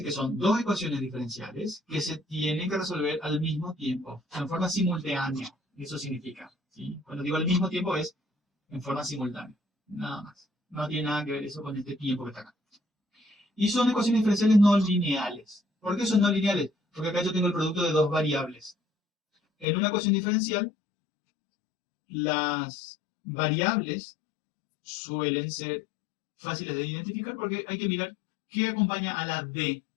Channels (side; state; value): right; drops out; at 19.7 s